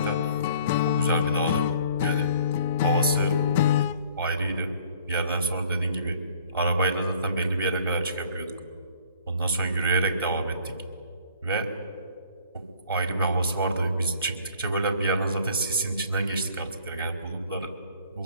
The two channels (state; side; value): inverted; both; correlation -0.55